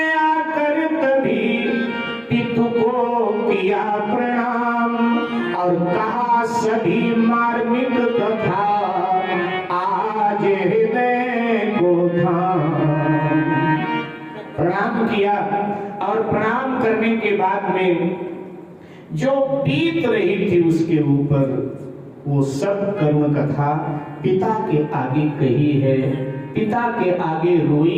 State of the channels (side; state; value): both; identical; correlation 1.00